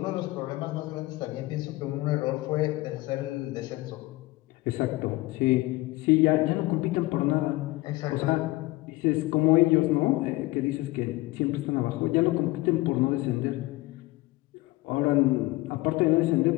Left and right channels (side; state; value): right; quieter; 20.0 dB